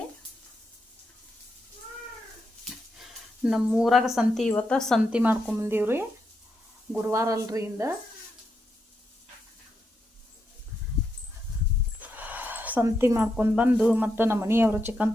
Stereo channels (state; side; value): normal; both; correlation 0.83